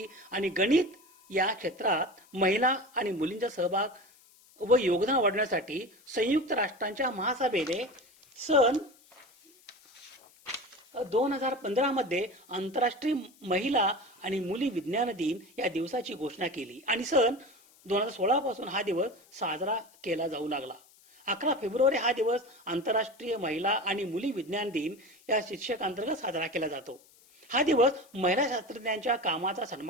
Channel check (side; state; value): left; noise; hiss, 28 dB below the sound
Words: आणि गणित या क्षेत्रात महिला आणि मुलींचा सहभाग व योगदान वाढवण्यासाठी संयुक्त राष्ट्रांच्या महासभेने सन 2015 मध्ये आंतरराष्ट्रीय महिला आणि मुली विज्ञान दिन या दिवसाची घोषणा केली आणि सन 2016 पासून हा दिवस साजरा केला जाऊ लागला. 11 फेब्रुवारी हा दिवस आंतरराष्ट्रीय महिला आणि मुली विज्ञान दिन या शीर्षकांतर्गत साजरा केला जातो. हा दिवस महिला शास्त्रज्ञांच्या कामाचा